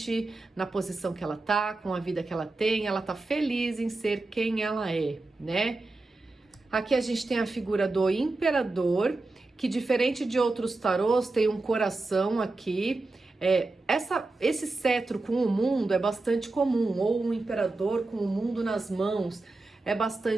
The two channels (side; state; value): left; quieter; 3.2 dB